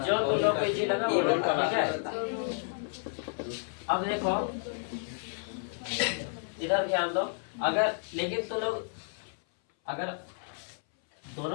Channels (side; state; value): right; silent; 57 dB below the other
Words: जो तो लोग को जी लगा वो लोग, ठीक है? अब देखो इधर ध्यान दो, अगर लेकिन तो लोग अगर